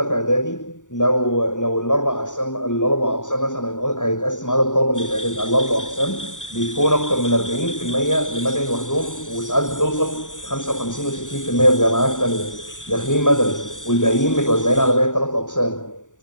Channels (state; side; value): late; right; 0.86 ms